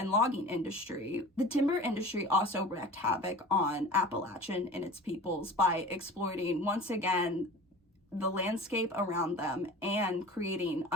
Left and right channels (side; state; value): both; normal; correlation 0.39